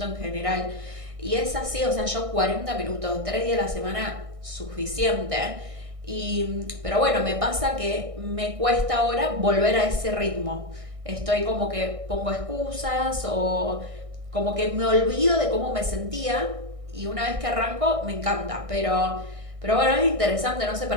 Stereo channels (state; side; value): late; left; 1.6 ms